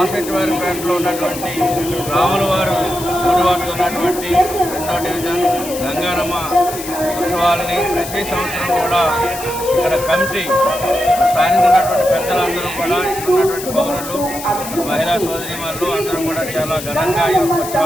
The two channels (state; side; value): noise; left; hiss, 10 dB below the sound